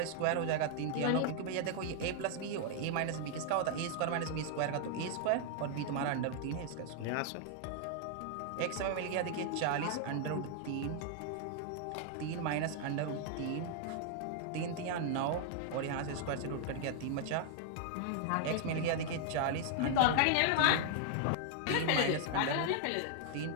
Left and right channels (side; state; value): both; different; correlation 0.00